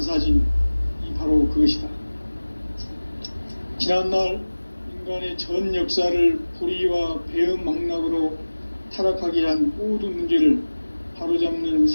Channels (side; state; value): both; inverted; correlation -1.00